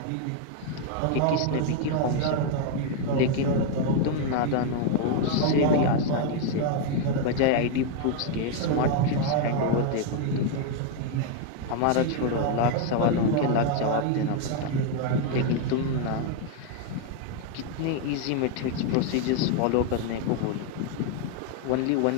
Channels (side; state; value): both; different; correlation 0.01